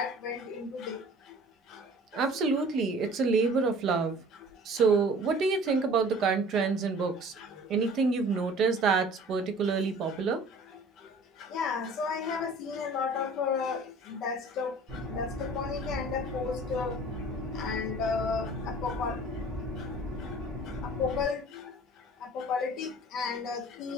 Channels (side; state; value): both; normal; correlation 0.47